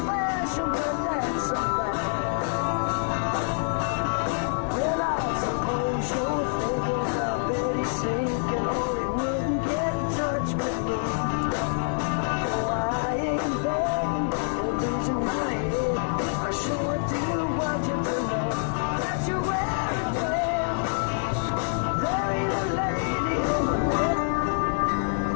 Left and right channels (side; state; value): right; silent; digital silence